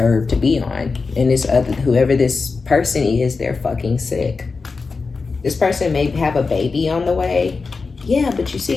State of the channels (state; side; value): quieter; right; 4.4 dB